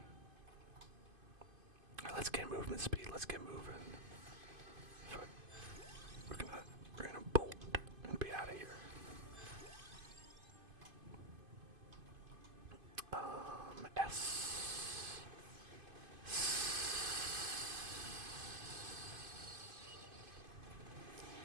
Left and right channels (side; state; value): left; late; 2.5 ms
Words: Alright, let's get movement speed. Let's get moving. We're gonna bolt and be out of here. S.